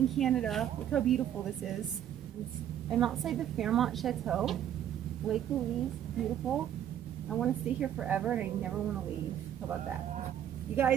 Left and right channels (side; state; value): left; quieter; 10.5 dB